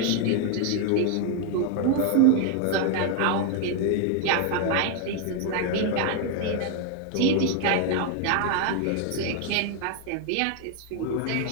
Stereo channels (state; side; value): different; both; correlation 0.01